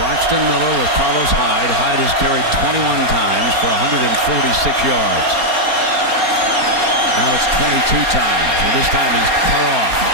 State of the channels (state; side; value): late; left; 4.4 ms